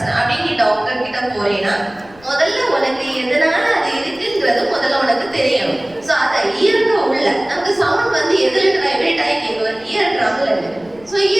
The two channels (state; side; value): noise; left; rumble, 26 dB below the sound